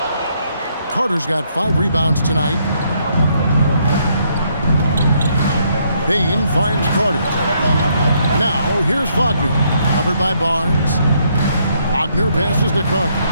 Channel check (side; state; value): both; inverted; correlation -0.72